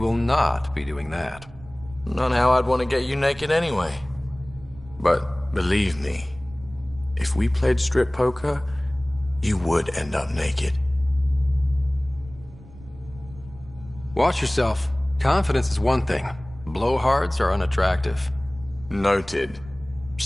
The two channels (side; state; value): right; noise; rumble, 19 dB below the sound